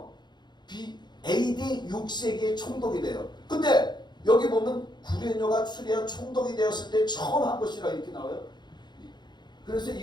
AD 6세기의 총독이 돼요. 근데 여기 보면 구레뇨가 수리아 총독이 되었을 때 처음 한 것이라 이렇게 나와요. 그래서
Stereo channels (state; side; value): late; right; 0.21 ms